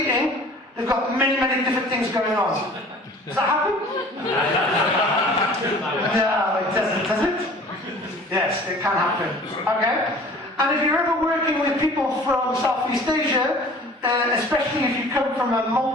they've got many, many different things going on. Does that happen? No, it doesn't, does it? Yes, it can happen. Okay? And if you're ever working with people from Southeast Asia, especially if you come from a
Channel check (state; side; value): normal; both; correlation 0.47